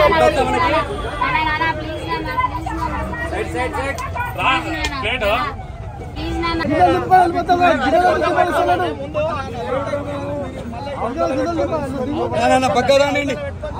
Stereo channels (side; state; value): both; identical; correlation 1.00